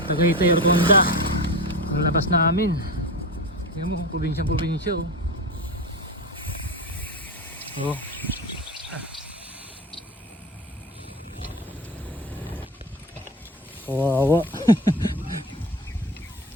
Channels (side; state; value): both; normal; correlation 0.25